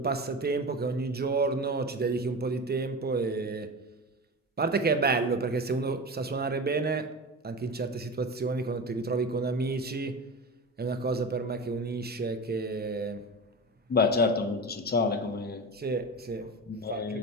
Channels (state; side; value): normal; both; correlation 0.27